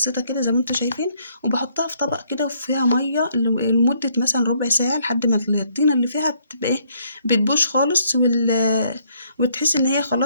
كده زي ما انتم شايفين، وبحطها في طبق كده وفيها ميه لمده مثلا ربع ساعه لحد ما الطينه اللي فيها بتبقى ايه، بتبوش خالص، وتحس ان هي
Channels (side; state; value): both; inverted; correlation -0.68